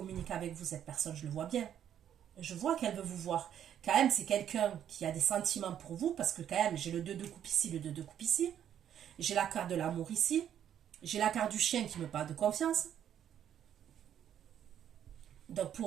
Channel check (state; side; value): quieter; left; 9.8 dB